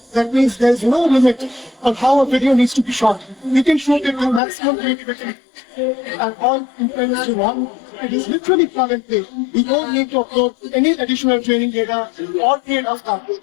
That means there's no limit on how a video needs to be shot. We can shoot it with maximum creativity and all implements you want. It is literally plug and play. We don't need to upload any additional training data or create a content.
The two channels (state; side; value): drops out; right; at 4.4 s